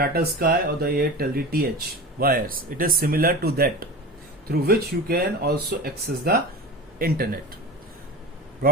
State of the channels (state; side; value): normal; both; correlation 0.30